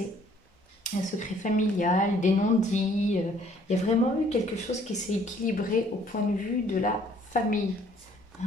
un secret familial, des non-dits. Il y a vraiment eu quelque chose qui s'est équilibré au point de vue de la famille.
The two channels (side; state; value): both; normal; correlation 0.60